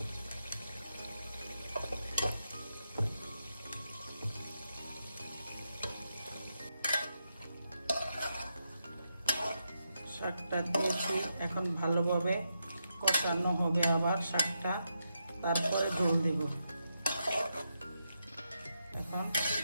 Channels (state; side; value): inverted; both; correlation -0.84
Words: শাকটা দিয়েছি, এখন ভালোভাবে কষানো হবে আবার শাকটা, তারপরে ঝোল দেব। এখন